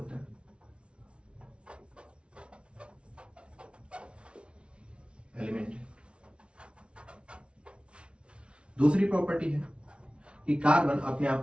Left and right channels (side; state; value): left; late; 0.059 ms